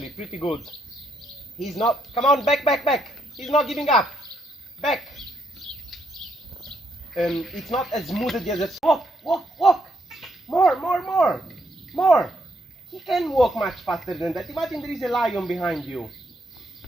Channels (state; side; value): normal; both; correlation 0.75